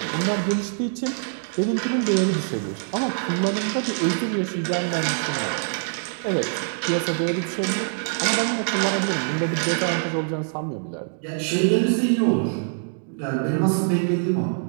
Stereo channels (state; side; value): silent; left; digital silence